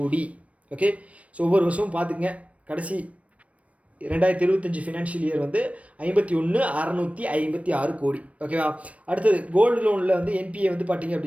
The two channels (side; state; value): left; late; 0.065 ms